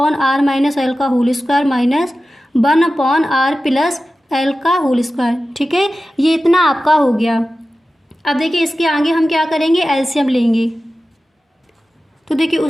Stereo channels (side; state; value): both; normal; correlation 0.94